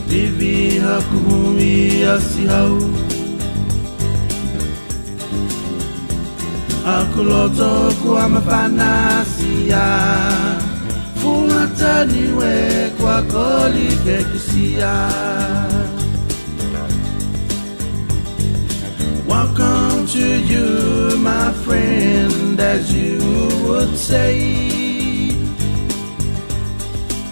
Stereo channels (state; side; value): inverted; both; correlation -1.00